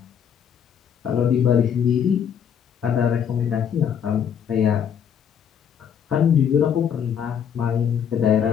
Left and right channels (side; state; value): right; quieter; 8.1 dB